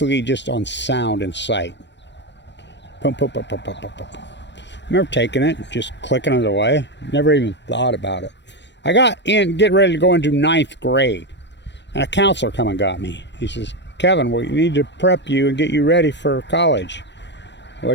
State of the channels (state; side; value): late; right; 0.51 ms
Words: just on sound and sight. Pum, pum, pum, pum, pum, pum, pum. I remember taking it, just clicking it away. Never even thought about it. I got in, getting ready to go into 9th grade. And a counselor come and got me. He says, Kevin, we need to prep you and get you ready for college. What